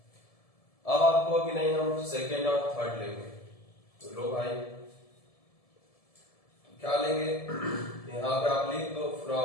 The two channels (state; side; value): late; right; 1.7 ms